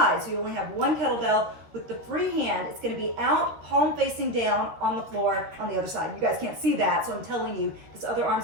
so you only have one kettlebell. With the free hand, it's going to be out, palm facing down on the floor on the other side. You guys can't see that, so I'm telling you, this other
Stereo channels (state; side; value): late; left; 13 ms